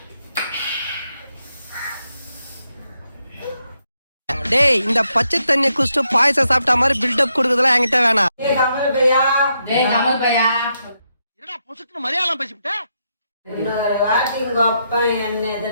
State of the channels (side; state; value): both; inverted; correlation -0.80